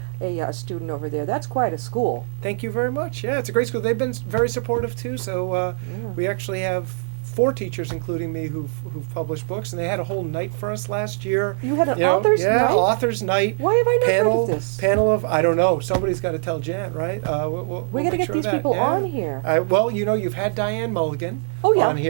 student over there. That's quite a school. Thank you very much. Yeah, it's a great school. They've been very supportive too. So we actually have 4 teachers, including me, who've published books, and they had a whole night for us last year. You had an author's night? Author's night. Why have I not heard of this? Panel of, I don't know. Somebody's got to tell Jan, right? We'll We gotta make get sure these of that. people on here. Well, you've had Diane Mulligan Oh, yeah. on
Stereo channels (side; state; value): left; silent; 64 dB below the other